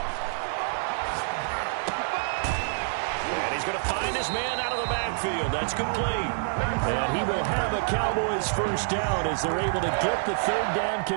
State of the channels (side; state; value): left; silent; digital silence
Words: Going to find his man out of the backfield. That's complete. And he will have a Cowboys 1st down as they're able to get the 3rd down